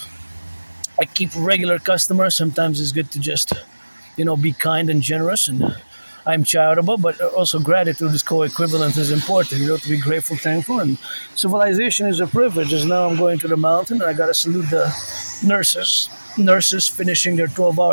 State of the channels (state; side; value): inverted; both; correlation -1.00